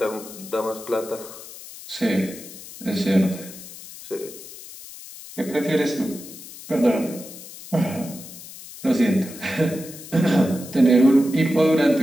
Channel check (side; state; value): left; noise; hiss, 15 dB below the sound